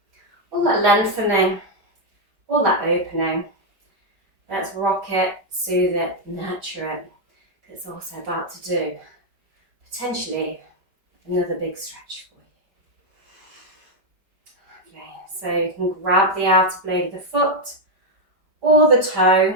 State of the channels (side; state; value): left; late; 5.0 ms